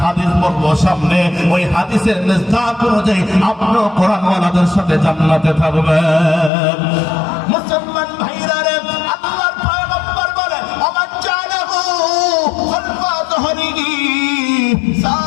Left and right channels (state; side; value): drops out; right; at 6.5 s